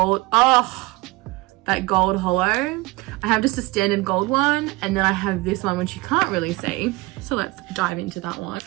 that gold hollow. I have just a standard gold one, and then I have this one which you can't really see. So let's dive into that one.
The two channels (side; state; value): left; quieter; 21.3 dB